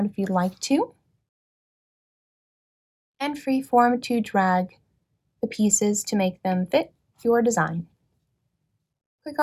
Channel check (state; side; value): identical; both; correlation 1.00